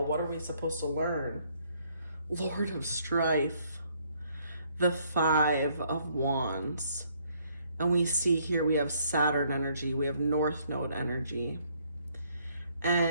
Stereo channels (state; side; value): inverted; both; correlation -0.67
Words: what are we supposed to learn? Lord of Strife, the 5 of Wands. And we see here we have Saturn energy, we have North Node energy.